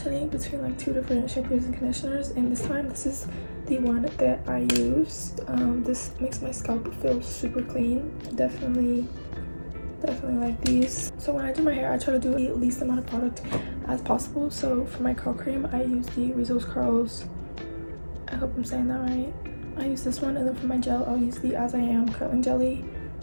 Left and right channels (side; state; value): both; inverted; correlation -1.00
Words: between like 2 different shampoos and conditioners, and this time this is the one that I used. This makes my scalp feel super clean. Definitely like these. So when I do my hair, I try to do the least amount of product as possible. So for my curl cream, I use the Rizzo's Curls, I hope I'm saying that right. I use this one, and then for my gel, I'll use the As I Am curling jelly.